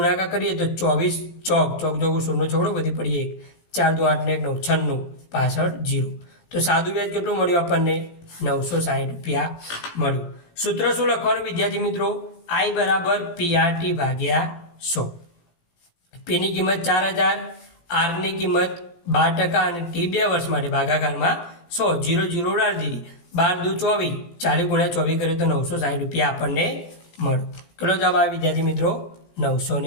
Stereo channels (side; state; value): right; late; 17 ms